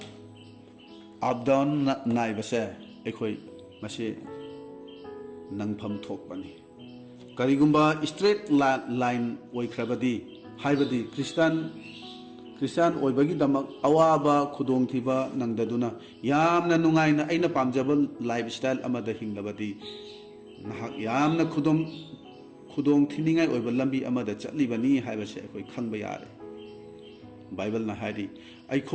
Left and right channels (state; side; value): identical; both; correlation 1.00